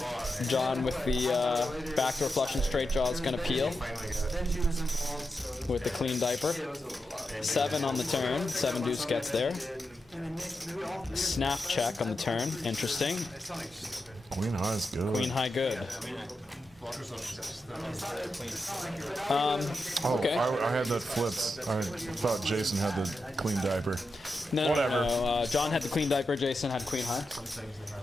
John with the backdoor flush and straight jaw is going to peel with the clean diaper. 7 on the turn. 7 deuce gets there. Snap check on the turn. Interesting. Queen high is good. Queen high good. Okay. I had that flipped. I thought Jason had the clean diaper. No, Whatever. no. John had the queen diaper. Jason had queen high.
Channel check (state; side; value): normal; both; correlation 0.88